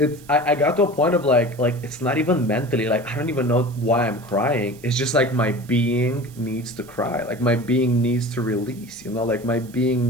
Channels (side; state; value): right; noise; hiss, 24 dB below the sound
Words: got to a point of like it's not even mentally, like I don't even know why I'm crying. It's just like my being needs to cry, like my being needs to release, you know, like my being